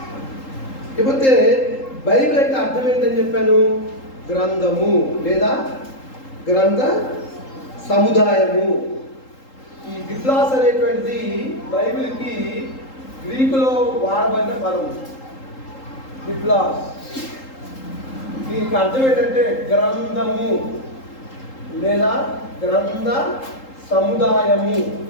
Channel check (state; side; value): late; right; 3.8 ms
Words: ఇకపోతే బైబిల్ అంటే అర్థం ఏంటని చెప్పాను? గ్రంథము లేదా గ్రంథ సముదాయము. ఈ బిబ్లాస్ అనేటువంటిది బైబిల్కి గ్రీకులో వాడబడిన పదం. బిబ్లాస్ దీనికి అర్థం ఏంటంటే గ్రంథము లేదా గ్రంథ సముదాయము.